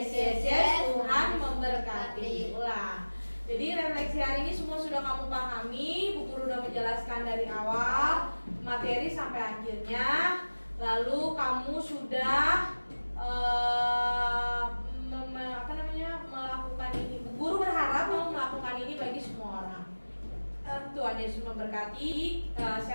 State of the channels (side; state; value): both; inverted; correlation -1.00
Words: yes, yes. Tuhan memberkati. Ulang. Jadi refleksi hari ini semua sudah kamu pahami. Bu Guru sudah menjelaskan dari awal materi sampai akhirnya. Lalu kamu sudah melakukan ini. Bu Guru berharap kamu melakukan ini bagi semua orang. Tuhan Yesus memberkati.